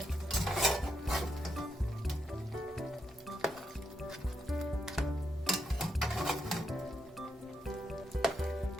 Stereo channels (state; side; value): normal; both; correlation 0.81